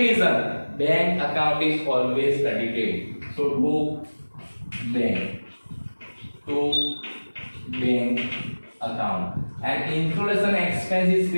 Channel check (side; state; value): both; inverted; correlation -1.00